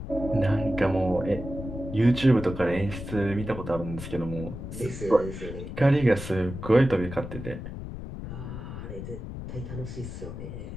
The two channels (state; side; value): noise; left; rumble, 9 dB below the sound